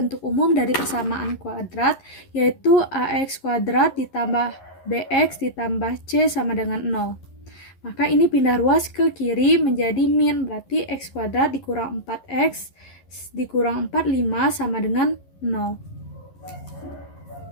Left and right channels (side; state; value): right; late; 11 ms